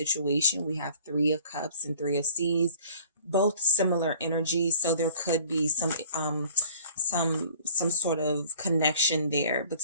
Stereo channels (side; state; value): both; inverted; correlation -0.51